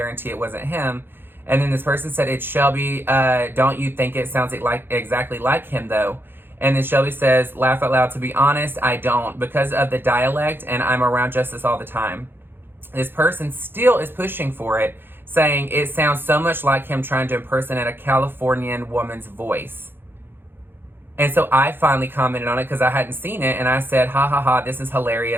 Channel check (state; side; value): late; left; 0.10 ms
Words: it wasn't him. And then this person said, it's Shelby. Don't you think it sounds like exactly like him, though? And then Shelby says, laugh out loud, to be honest, I don't, because of the dialect, and I'm around Justice all the time. This person still is pushing for it, saying it sounds so much like him trying to impersonate a Californian woman's voice. And so I finally commented on it because I hadn't seen it, and I said, ha ha ha, this is